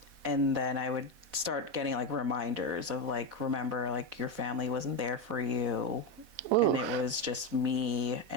then I would start getting like reminders of like, remember, like your family wasn't there for you. Ooh. And it was just me,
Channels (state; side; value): late; left; 4.1 ms